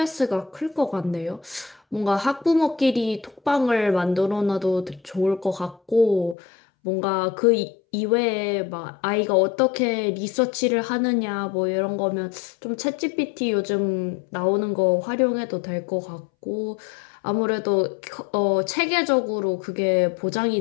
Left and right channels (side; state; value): right; drops out; at 6.4 s